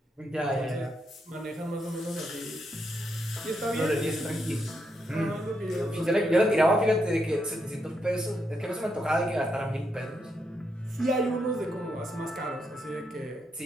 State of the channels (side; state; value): both; normal; correlation 0.81